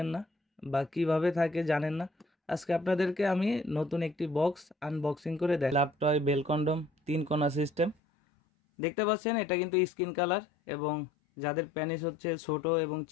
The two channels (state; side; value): drops out; right; at 8.0 s